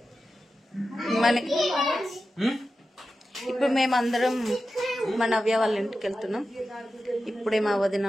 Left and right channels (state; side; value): normal; both; correlation 0.92